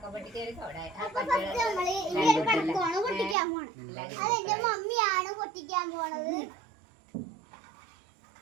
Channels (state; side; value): drops out; left; at 3.4 s